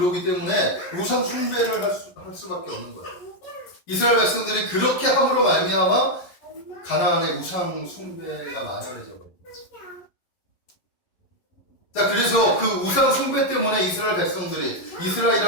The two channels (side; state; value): right; late; 11 ms